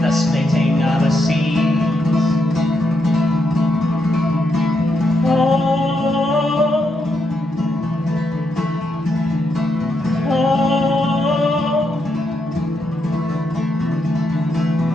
the splitting of a seed. Oh, oh,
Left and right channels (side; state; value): both; normal; correlation 0.81